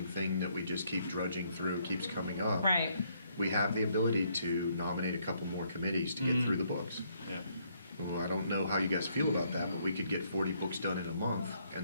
thing that we just keep drudging through, keeps coming up. Right. We have the ability to nominate a couple more committees to get through the books. Yeah. Well, I don't know how you guys feel about that, but we could get 40 books done in a month,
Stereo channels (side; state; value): both; inverted; correlation -0.70